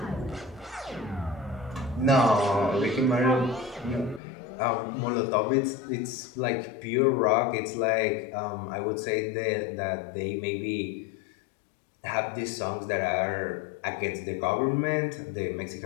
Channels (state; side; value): drops out; right; at 4.2 s